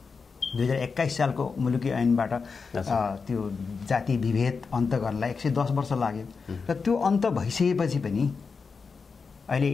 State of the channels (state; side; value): quieter; right; 5.0 dB